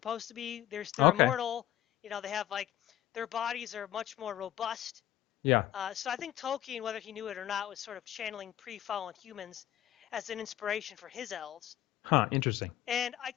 to be. They're Okay. immortal. They have like their bodies are much more robust. Yeah. So I think Tolkien, whether he knew it or not, was sort of channeling pre-fallen humans as an inspiration for his elves. Huh. Interesting. And I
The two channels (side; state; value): right; quieter; 13.1 dB